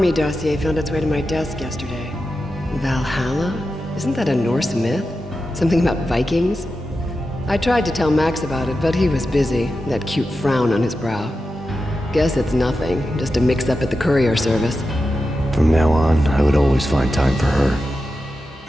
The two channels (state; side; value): normal; both; correlation 0.91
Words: dossier found its way to my desk yesterday. Valhalla? Isn't that a Norse myth? Something about Vikings? I tried to tell Max about it, but he was busy, that cute frown on his brow. Guess it's nothing, just a mix-up at the courier service. From now on, I would always find time for her.